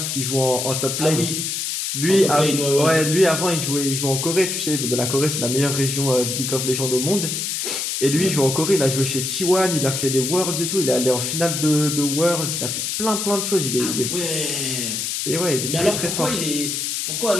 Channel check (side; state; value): left; noise; hiss, 2 dB below the sound